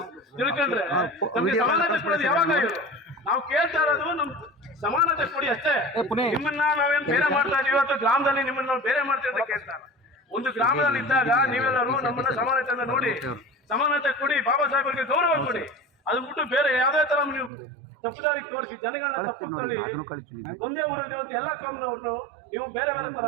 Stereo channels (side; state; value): left; drops out; at 17.5 s